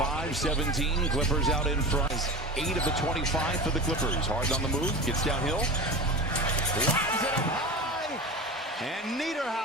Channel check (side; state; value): both; normal; correlation 0.30